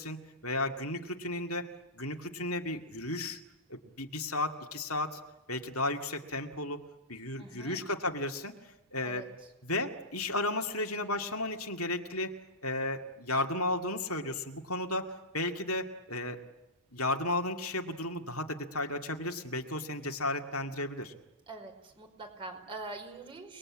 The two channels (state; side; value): normal; both; correlation -0.17